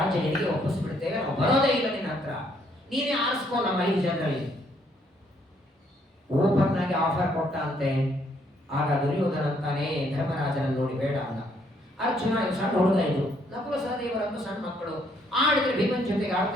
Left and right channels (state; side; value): normal; both; correlation 0.69